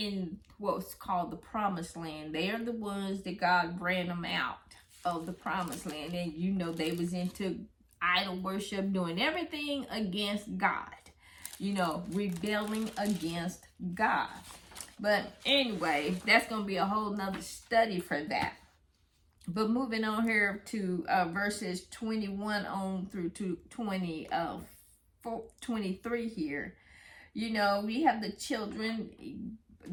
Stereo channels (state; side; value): identical; both; correlation 1.00